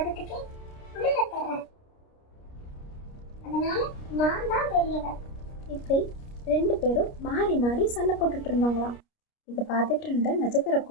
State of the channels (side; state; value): right; late; 29 ms